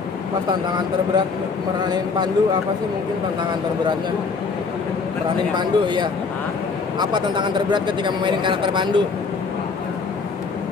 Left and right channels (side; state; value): right; quieter; 4.8 dB